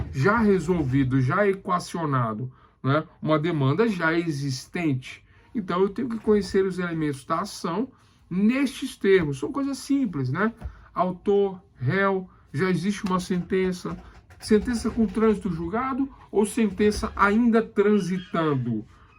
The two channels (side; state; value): both; identical; correlation 1.00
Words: já resolvido, já equacionado, né? Uma demanda já existente. Então, eu tenho que conhecer os elementos da ação nestes termos. São coisas simples, né? Autor, réu, já existe uma sentença. Sentença com trânsito julgado ou sentença ainda transitando,